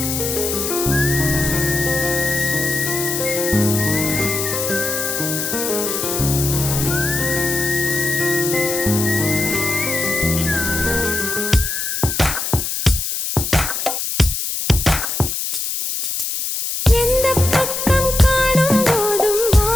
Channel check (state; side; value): noise; left; hiss, 2 dB below the sound